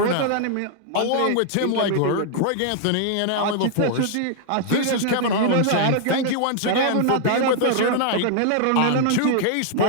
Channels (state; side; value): different; both; correlation -0.01